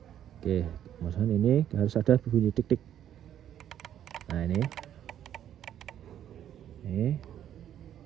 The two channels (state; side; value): quieter; left; 10.6 dB